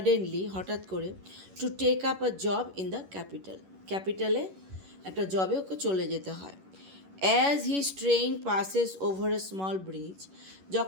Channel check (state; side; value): late; left; 11 ms